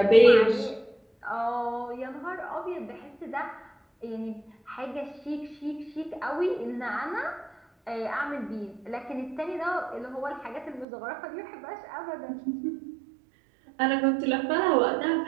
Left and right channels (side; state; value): left; drops out; at 10.9 s